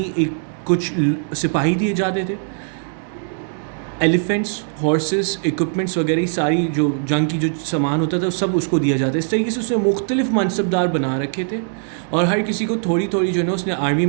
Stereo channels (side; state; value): left; silent; 61 dB below the other